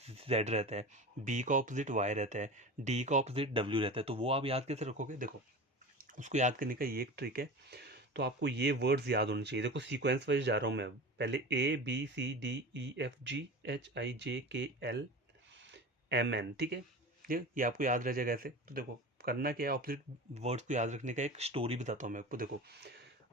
जेड रहता है, बी का ऑपोजिट वाई रहता है, डी का ऑपोजिट डब्ल्यू रहता है। तो वो आप याद कैसे रखोगे, देखो उसको याद करने का ये एक ट्रिक है। तो आपको ये वर्ड्स याद होने चाहिए, देखो सीक्वेंस वाइज जा रहा हूँ मैं। पहले A B C D E F G H I J K L M N, ठीक है। ये आपको याद रह जाएगा ऐसे। तो देखो करना क्या है, ऑपोजिट वर्ड्स को याद रखने का एक स्टोरी बताता हूँ मैं आपको। देखो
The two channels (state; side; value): normal; both; correlation 0.32